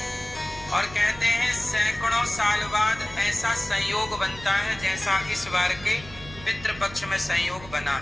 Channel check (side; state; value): right; noise; hum, 17 dB below the sound